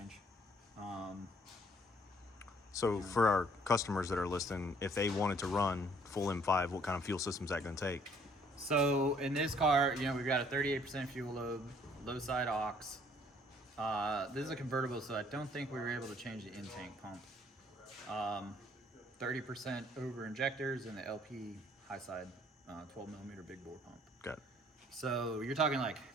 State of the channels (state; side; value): normal; both; correlation 0.61